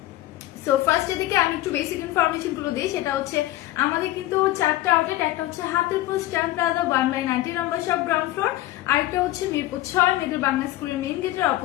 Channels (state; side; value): quieter; right; 15.6 dB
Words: সো ফার্স্ট এদিকে আমি একটু বেসিক ইনফরমেশন গুলো দিই, সেটা হচ্ছে আমাদের কিন্তু চারটা আউটলেট, একটা হচ্ছে হাতিরপুল স্ট্যাম্প প্লাজা 1/90 নম্বর শপ গ্রাউন্ড ফ্লোর, আরেকটা হচ্ছে মিরপুর 6 মিডল বাংলা স্কুলের মেইন গেটের